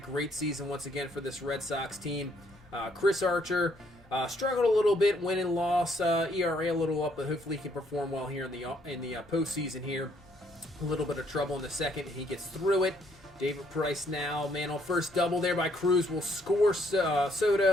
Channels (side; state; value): both; normal; correlation 0.69